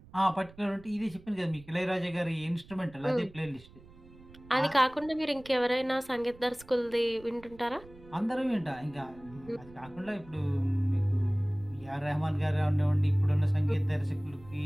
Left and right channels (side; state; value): right; noise; rumble, 22 dB below the sound